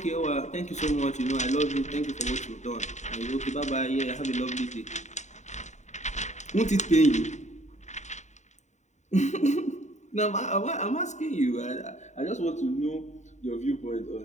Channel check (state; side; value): late; right; 0.34 ms